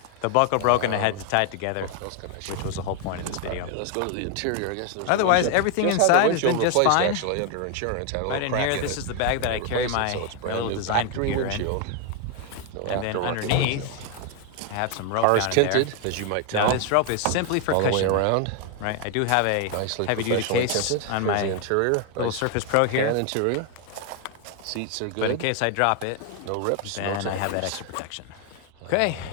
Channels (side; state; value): both; different; correlation 0.00